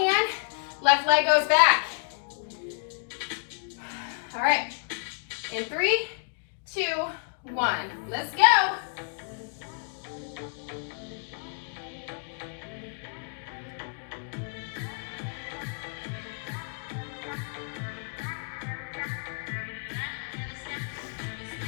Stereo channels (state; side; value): silent; right; 58 dB below the other